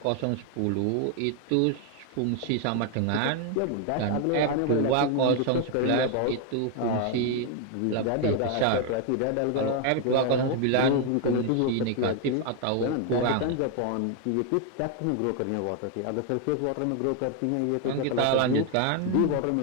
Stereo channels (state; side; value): different; both; correlation 0.00